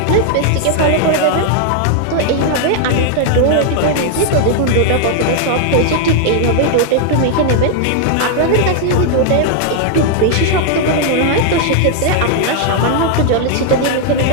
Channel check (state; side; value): different; both; correlation 0.00